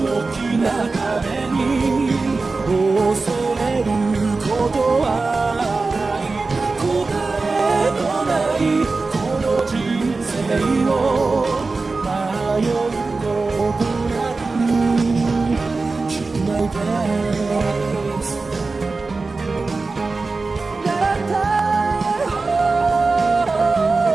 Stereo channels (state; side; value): quieter; left; 3.8 dB